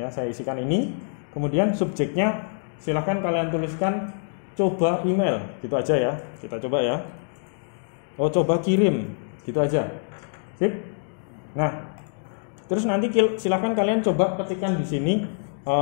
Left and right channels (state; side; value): silent; right; digital silence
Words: saya isikan ini. Kemudian subjeknya silahkan kalian tuliskan coba email, gitu aja ya. Kita coba ya, coba kirim, gitu aja. Sip. Nah, terus nanti silahkan kalian coba ketikkan di sini